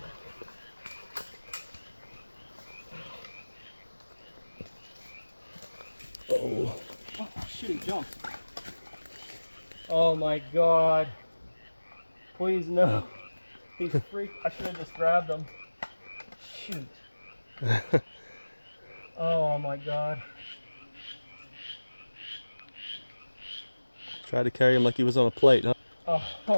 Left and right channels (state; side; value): inverted; both; correlation -1.00